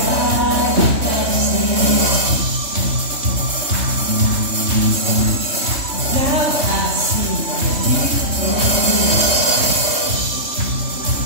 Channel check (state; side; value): late; left; 3.2 ms